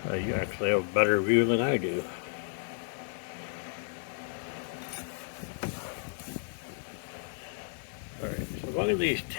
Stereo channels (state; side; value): silent; right; 56 dB below the other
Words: you actually have a better view than I do. Alright, so one of these